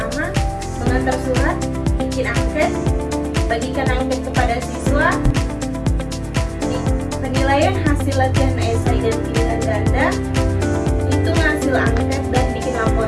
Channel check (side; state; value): both; identical; correlation 1.00